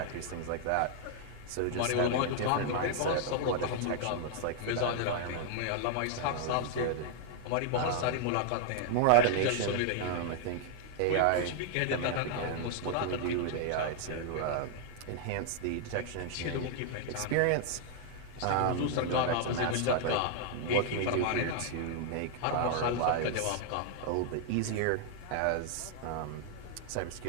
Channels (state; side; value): different; both; correlation -0.01